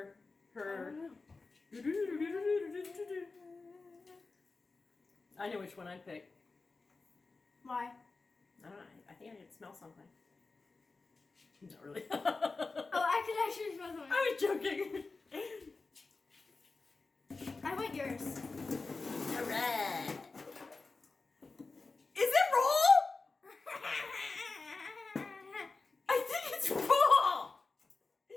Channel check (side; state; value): right; quieter; 3.9 dB